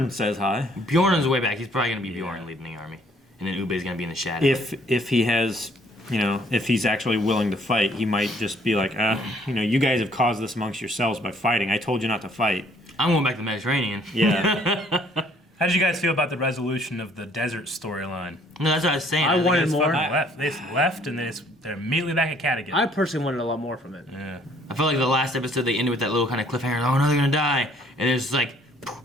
says hi. Bjorn on his way back. He's probably going to be Bjorn leading the army. And then Ube's going to be in the shadow. If he has, if he's actually willing to fight, he might just be like, you guys have caused this amongst yourselves by fighting. I told you not to fight. I'm going back to the Mediterranean. Yeah. How did you guys feel about the resolution of the desert storyline? No, that's what I was saying. I wanted more. They left, and they're immediately back at Kattegat. I personally wanted a lot more from it. Yeah. I felt like the last episode they ended with that little kind of cliffhanger. Oh no, they're gonna die, and there's like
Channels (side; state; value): both; normal; correlation 0.62